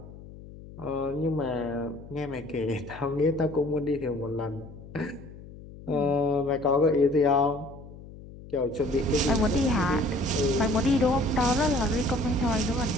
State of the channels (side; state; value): left; noise; hum, 17 dB below the sound